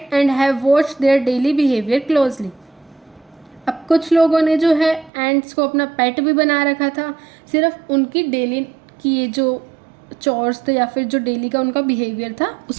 and have watched their daily behaviour closely. अब कुछ लोगों ने जो है एंट्स को अपना पेट भी बना रखा था, सिर्फ उनकी डेली की ये जो चोर्स थे या फिर जो डेली का उनका बिहेवियर था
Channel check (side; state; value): left; drops out; at 5.1 s